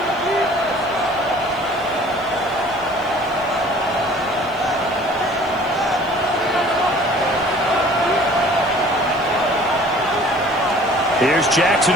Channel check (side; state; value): left; noise; hiss, 27 dB below the sound